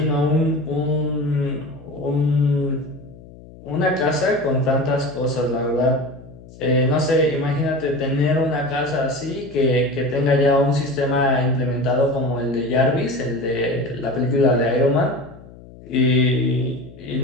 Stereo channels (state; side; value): noise; left; hum, 20 dB below the sound